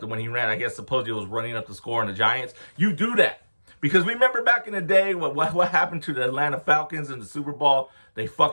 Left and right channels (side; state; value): both; inverted; correlation -1.00